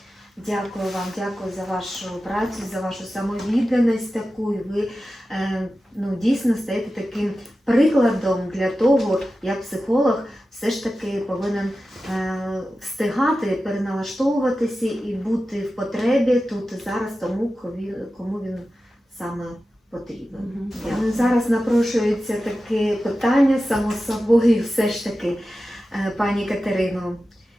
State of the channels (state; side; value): normal; both; correlation 0.93